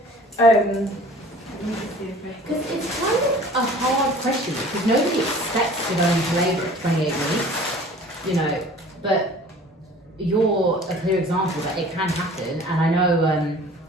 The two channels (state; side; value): normal; both; correlation 0.47